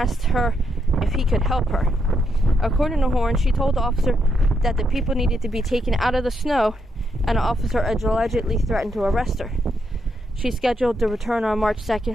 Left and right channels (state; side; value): normal; both; correlation 0.79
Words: her if he could help her. According to Horn, she told the officer that the people needed to be taken out of the snow, and the officer allegedly threatened to arrest her. She scheduled to return on March